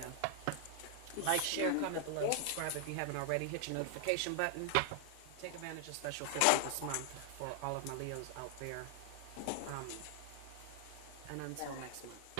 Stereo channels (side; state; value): both; different; correlation 0.00